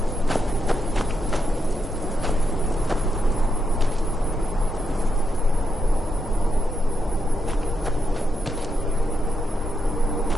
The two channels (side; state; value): both; normal; correlation 0.82